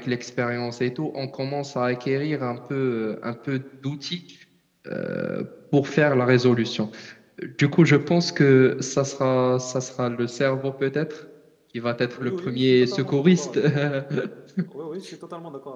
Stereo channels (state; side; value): identical; both; correlation 1.00